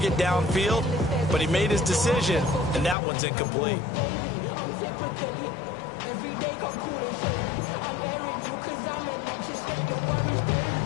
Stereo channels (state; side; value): drops out; right; at 3.0 s